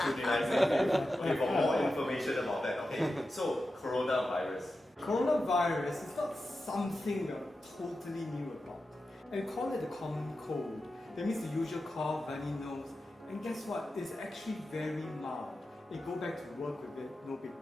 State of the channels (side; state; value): both; normal; correlation 0.91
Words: you, okay, for more information about that. Okay, so coronavirus. Coronavirus is not something we're totally new about. And we call it the common cold. That means the usual cough, runny nose. And guess what? It's actually very mild. You go back to work with it, no big